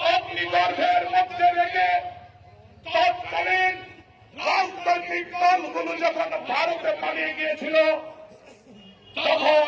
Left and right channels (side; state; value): both; identical; correlation 1.00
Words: অগ্নিগর্ভের মধ্যে রেখে তৎকালীন রাজনৈতিক দলগুলো যখন ভারতে পালিয়ে গিয়েছিল, তখন